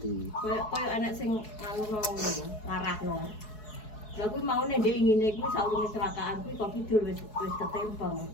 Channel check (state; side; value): late; right; 4.7 ms